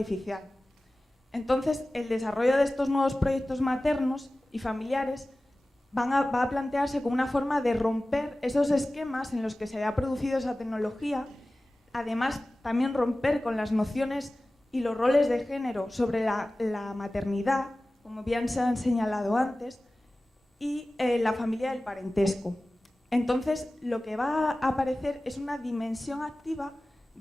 Entonces, el desarrollo de estos nuevos proyectos maternos y familiares va a plantearse como una forma de romper esos esquemas en los que se había producido esa tecnología, además también romper con las nociones y los roles de género sobre la maternidad, como bien se han señalado antes, y la familia del parentesco. Entonces, lo que va a aparecer es una dimensión activa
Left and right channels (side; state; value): both; normal; correlation 0.97